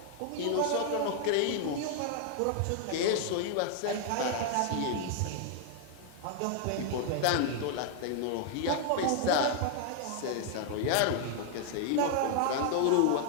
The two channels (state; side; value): different; both; correlation 0.00